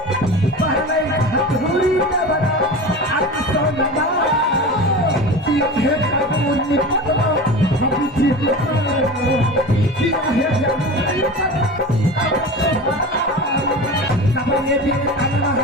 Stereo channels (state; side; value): normal; both; correlation 0.31